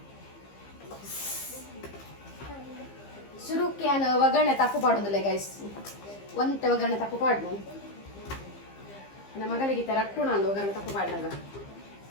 ಶುರುಕ್ಕೆ ಒಗ್ಗರಣೆ ತಪ್ಪು ಪಾಡೋದಿಲ್ಲ ಗೈಸ್ ಒಂತೆ ಒಗ್ಗರಣೆ ತಪ್ಪು ಪಾಡ್ನು ನನ್ನ ಮಗಳಿಗೆ ರಟ್ಟು ನಾನು ಒಗ್ಗರಣೆ ತಪ್ಪು ಪಾಡ್ನಾಗ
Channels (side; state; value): right; late; 15 ms